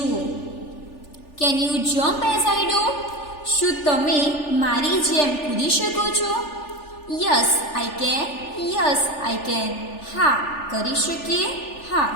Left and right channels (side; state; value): right; late; 3.4 ms